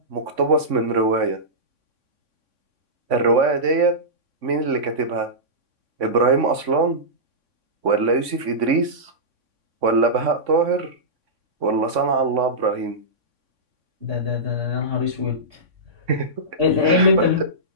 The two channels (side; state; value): left; late; 3.6 ms